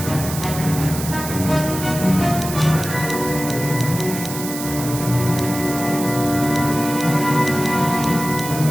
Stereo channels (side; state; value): right; noise; hiss, 8 dB below the sound